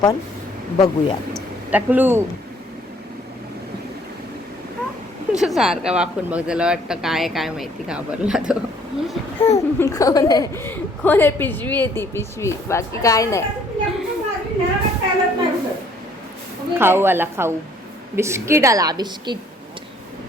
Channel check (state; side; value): normal; both; correlation 0.61